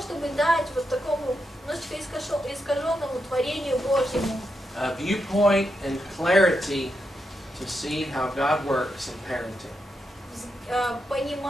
дать вот такому немножечко искаженному творению Божьему a viewpoint and clarity to see how God works in parenting.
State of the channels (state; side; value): normal; both; correlation 0.84